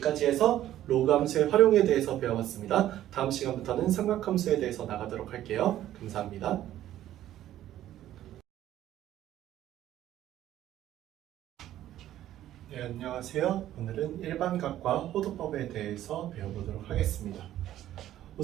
해서 로그 함수의 활용에 대해서 배워봤습니다. 다음 시간부터는 삼각함수에 대해서 나가도록 할게요. 감사합니다. 네, 안녕하세요. 오늘은 일반각과 호도법에 대해서 배워보도록 하겠습니다.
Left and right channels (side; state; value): left; quieter; 12.7 dB